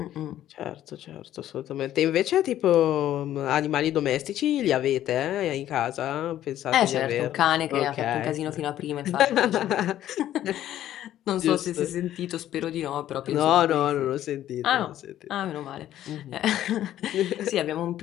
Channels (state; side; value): quieter; right; 12.3 dB